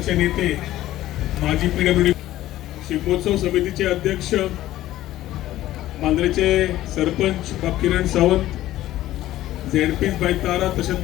नेते माजी PWD शिगमोत्सव समितीचे अध्यक्ष मांद्रेचे सरपंच बाब किरण सावंत ZP बाय तारा तशेंच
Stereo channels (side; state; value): right; quieter; 14.7 dB